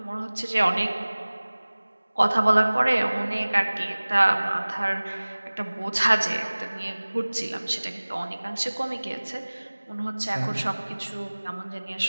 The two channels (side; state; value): both; inverted; correlation -1.00